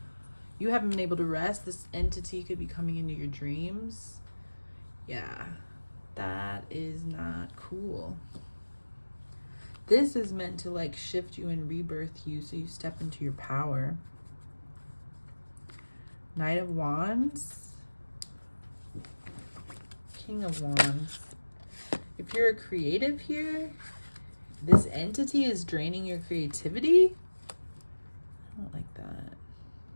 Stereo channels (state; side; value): inverted; both; correlation -1.00